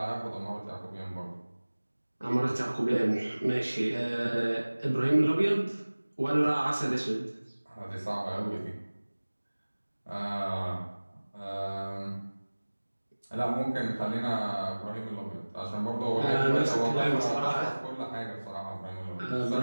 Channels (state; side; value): inverted; both; correlation -1.00